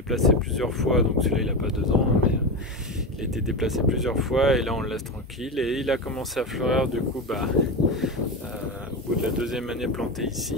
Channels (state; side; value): normal; both; correlation 0.19